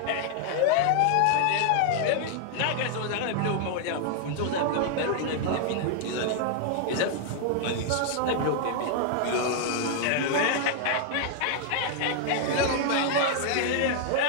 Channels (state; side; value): different; both; correlation 0.00